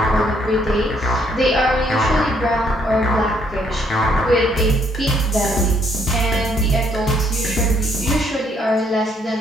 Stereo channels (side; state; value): both; normal; correlation 0.68